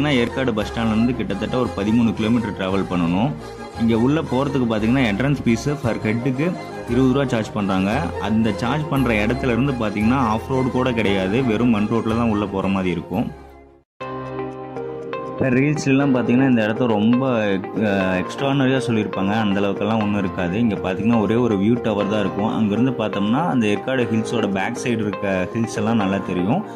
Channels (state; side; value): identical; both; correlation 1.00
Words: ஏற்காடு பஸ் ஸ்டாண்ட்லேருந்து கிட்டத்தட்ட ஒரு 13 கிலோமீட்டர் ட்ராவல் பண்ணணும். இங்கே உள்ளே போகிறதுக்கு பார்த்தீங்கன்னா என்ட்ரன்ஸ் ஃபீஸு ஃபர் ஹெட்டுக்கு 20 ரூபா சார்ஜ் பண்ணுறாங்க. அந்த சார்ஜ் பண்ணுற இடத்துல இருந்து பார்த்தீங்கன்னா ஆஃப் ரோடு கூட கிடையாது, வெறும் மண் ரோட்டில் தான் உள்ளே போகிற மாதிரி இருக்கும். இப்போ ரீல்ஸ்லாம் பார்த்தீங்கன்னா இந்த இடத்த ரொம்ப எக்ஸ்ட்ரானரியாக சொல்லியிருப்பாங்க, அந்தளவுக்கெல்லாம் ஒன்றும் இருக்காது. இங்கே பார்த்தீங்கன்னா ஒரே ஒரு வியூ டவர் தான் இருக்கும். அங்கேருந்து பார்த்தோம்னா அந்த ஏற்காடு ஹில்ஸோட பேக் சைடு இருக்க ஹில்ஸ் எல்லாம் நல்லா தெரியும்.